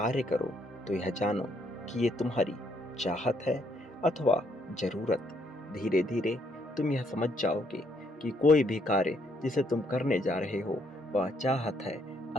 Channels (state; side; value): normal; both; correlation 0.71